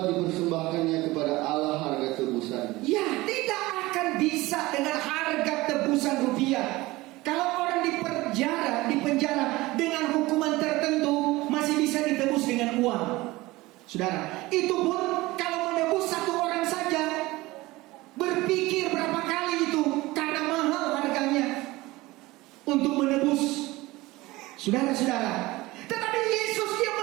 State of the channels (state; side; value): quieter; left; 20.0 dB